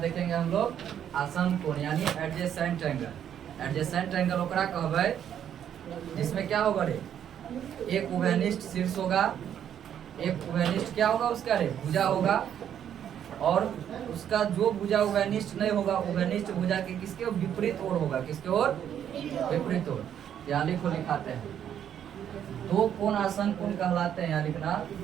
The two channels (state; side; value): quieter; left; 9.5 dB